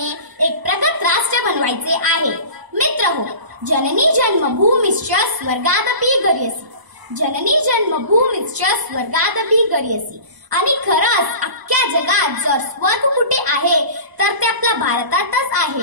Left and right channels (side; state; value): left; late; 1.0 ms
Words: एक प्रगत राष्ट्र बनवायचे आहे। मित्रहो, जननी जन्मभूमिश्च स्वर्गादपि गरीयसी, जननी जन्मभूमिश्च स्वर्गादपि गरीयसी। आणि खरंच अख्ख्या जगात जर स्वर्ग कुठे आहे तर ते आपल्या भारतातच